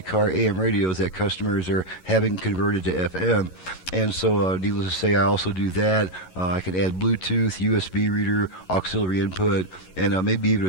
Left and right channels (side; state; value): right; late; 11 ms